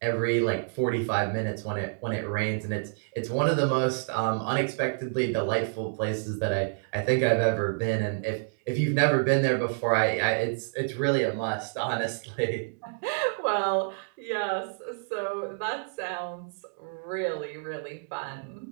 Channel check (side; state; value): left; silent; digital silence